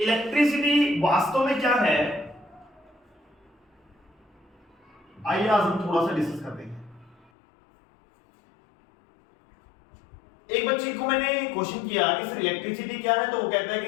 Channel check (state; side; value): drops out; right; at 7.3 s